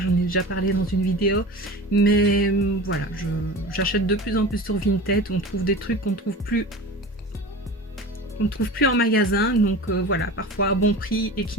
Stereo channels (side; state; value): both; normal; correlation 0.34